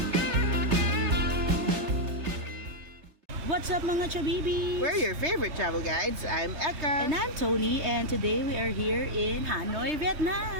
What's up mga chabibi? We're your favorite travel guides. I'm Eka. And I'm Tony, and today we are here in Hanoi, Vietnam.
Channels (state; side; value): late; left; 3.3 ms